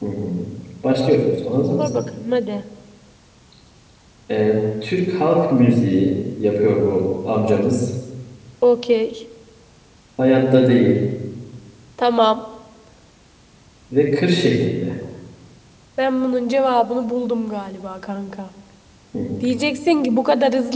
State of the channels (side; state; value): both; identical; correlation 1.00